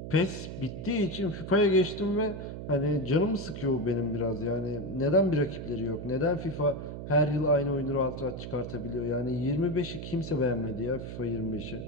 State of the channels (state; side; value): noise; right; hum, 8 dB below the sound